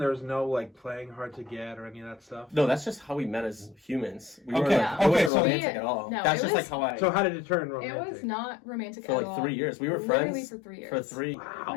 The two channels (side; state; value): right; drops out; at 5.3 s